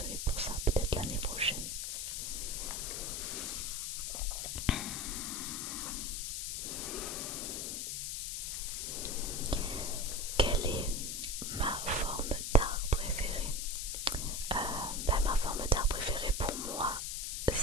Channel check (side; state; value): left; noise; hiss, 2 dB below the sound